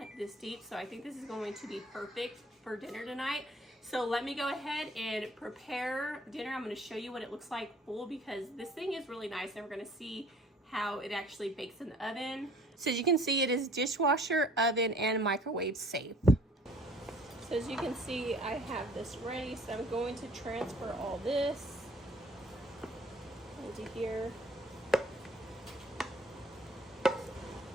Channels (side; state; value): both; normal; correlation 0.55